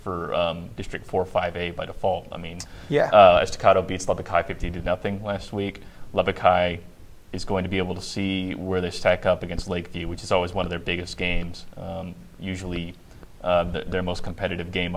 for District 4-5A by default. I mean, Estacado beats Lubbock High 50-0 last week. Lubbock High is going to be able to see where they stack up against Lakeview, which is always one of their biggest games, usually their most competitive game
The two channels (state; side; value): identical; both; correlation 1.00